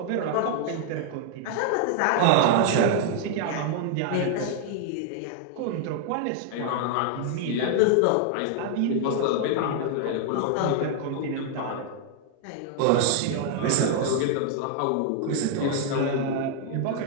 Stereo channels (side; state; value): both; different; correlation 0.00